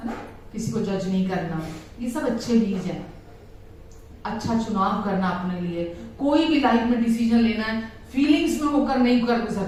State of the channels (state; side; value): identical; both; correlation 1.00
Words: है ना, किसी को जज नहीं करना, ये सब अच्छे बीज हैं। अच्छा चुनाव करना अपने लिए, कोई भी लाइफ में डिसीजन लेना है, फीलिंग्स में होकर नहीं कर